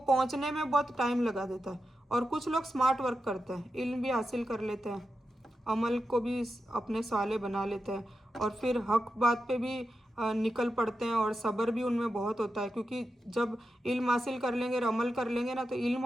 में बहुत टाइम लगा देता है। और कुछ लोग स्मार्ट वर्क करते हैं, इल्म भी हासिल कर लेते हैं, अमल को भी अपने साले बना लेते हैं, और फिर हक बात पे भी निकल पड़ते हैं, और सब्र भी उनमें बहुत होता है, क्योंकि जब इल्म हासिल कर लेंगे और अमल कर लेंगे ना, तो इल्म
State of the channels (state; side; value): normal; both; correlation 0.89